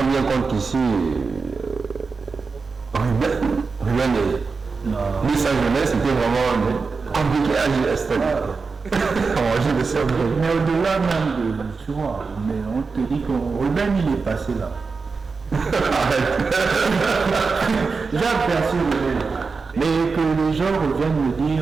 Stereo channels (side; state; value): left; quieter; 4.6 dB